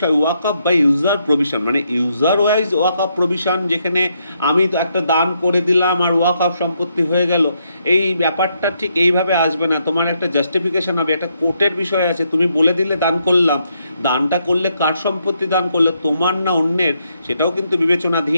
ওয়াকফ বাই ইউজার প্রভিশন, মানে ইউজার ওয়াইজ ওয়াকফ প্রভিশন, যেখানে আমি তো একটা দান করে দিলাম আর ওয়াকফ সম্পত্তি হয়ে গেল, এই ব্যাপারটা ঠিক এইভাবে আসবে না। তোমার একটা জাস্টিফিকেশন হবে, একটা কোর্টের বিষয় আছে। তুমি বলে দিলে দান করলাম, দানটা করলে কার সম্পত্তি দান করলে, তোমার না অন্যের, সেটাও কিন্তু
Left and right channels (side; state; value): both; inverted; correlation -0.77